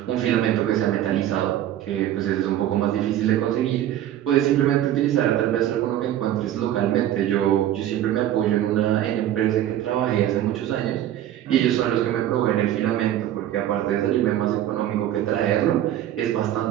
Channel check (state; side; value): quieter; left; 12.1 dB